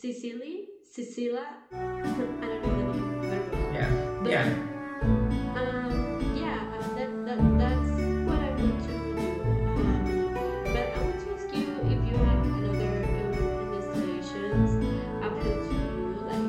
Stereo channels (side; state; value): both; identical; correlation 1.00